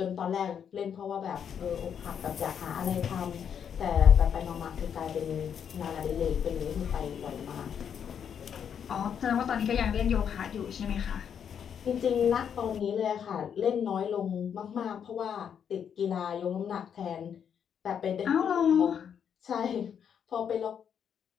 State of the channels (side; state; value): right; quieter; 8.0 dB